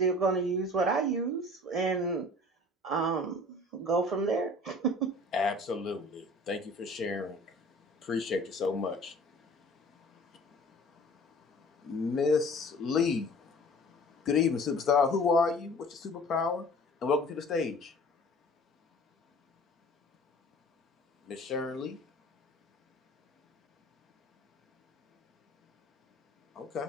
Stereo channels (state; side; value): normal; both; correlation 0.46